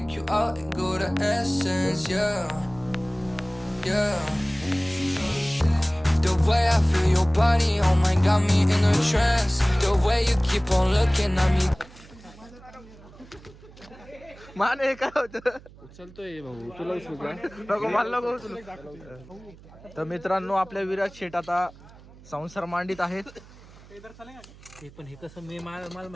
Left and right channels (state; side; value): noise; right; hum, 22 dB below the sound